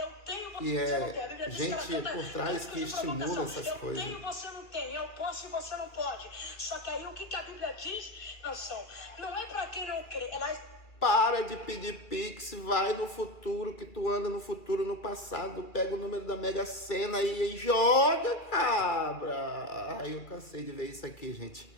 tenho, E você não tem. A Bíblia é diz que ela gente canta por trás que cânticos de estimula provocação. essas coisas. Eu tenho, você não tem. Eu posso e você não pode. Só que aí o que a Bíblia diz, Nação? Não é para quem não crê. Ela Para de pedir pix, vai no futuro, que tu anda no futuro, no passado, pega o número da Mega Sena e joga, cabra. Ai, eu cansei de ver isso aqui, gente.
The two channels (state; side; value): late; right; 2.3 ms